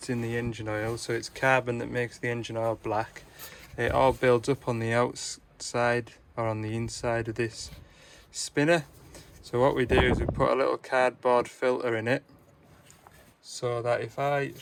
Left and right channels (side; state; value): both; identical; correlation 1.00